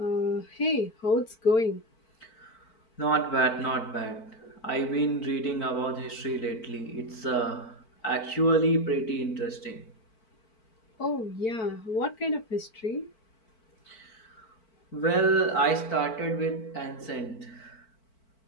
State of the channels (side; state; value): right; late; 4.5 ms